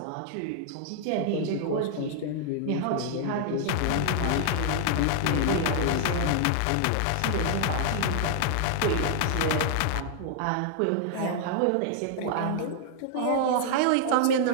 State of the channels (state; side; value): different; both; correlation 0.00